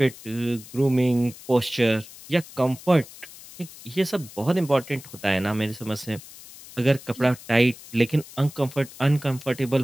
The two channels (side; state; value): left; noise; hiss, 18 dB below the sound